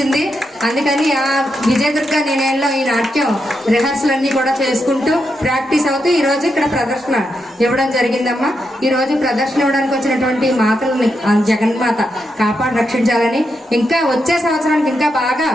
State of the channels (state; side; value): normal; both; correlation 0.84